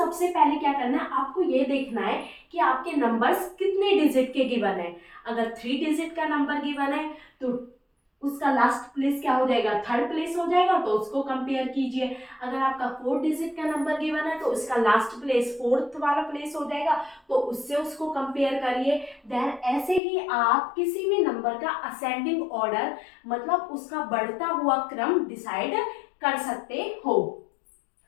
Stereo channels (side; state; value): right; drops out; at 20.0 s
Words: पहले क्या करना है, आपको ये देखना है कि आपके नंबर्स कितने डिजिट के गिवन है। अगर 3 डिजिट का नंबर गिवन है तो उसका लास्ट प्लेस क्या हो जाएगा, थर्ड प्लेस हो जाएगा, तो उसको कंपेयर कीजिए। अगर आपका 4 डिजिट का नंबर गिवन है तो उसका लास्ट प्लेस फोर्थ वाला प्लेस हो जाएगा, तो उससे उसको कंपेयर करिए। देन ऐसे ही आप किसी भी नंबर का असेंडिंग ऑर्डर, मतलब उसका बढ़ता हुआ क्रम डिसाइड कर सकते हो।